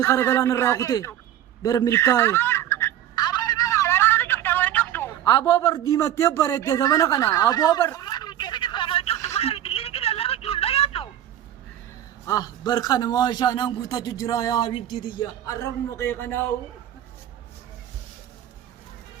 kara galaan irraa kute bar milkaa'ee Aboo ilma waraana cufta wal cuftu. aboo bar diimattee bareedde zamana kana aboo bar bar kana maashaa naan guutachuu jira yaa habibtii tiyya arrabuma qe'ee kanaawu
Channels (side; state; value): left; quieter; 11.8 dB